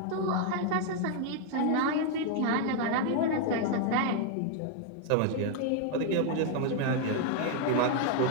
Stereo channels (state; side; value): different; both; correlation 0.00